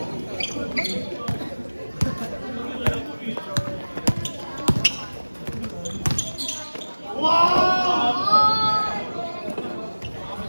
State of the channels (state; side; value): inverted; both; correlation -1.00